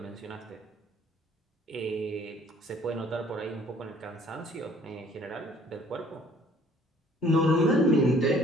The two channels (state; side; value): normal; both; correlation 0.57